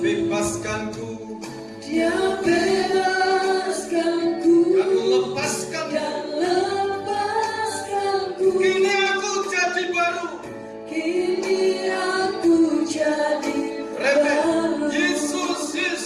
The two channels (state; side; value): identical; both; correlation 1.00